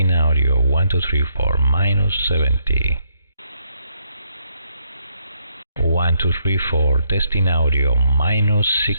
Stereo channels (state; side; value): inverted; both; correlation -0.74